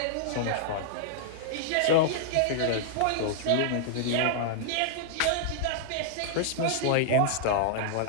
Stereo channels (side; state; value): both; different; correlation -0.01